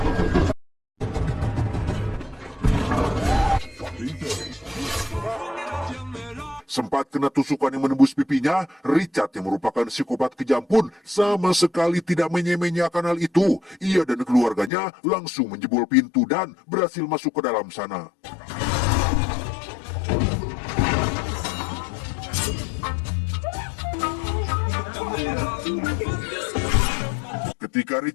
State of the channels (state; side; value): drops out; right; at 14.7 s